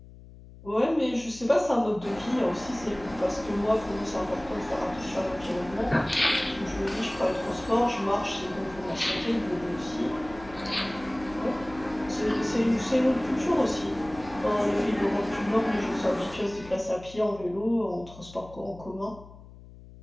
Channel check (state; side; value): noise; left; hum, 19 dB below the sound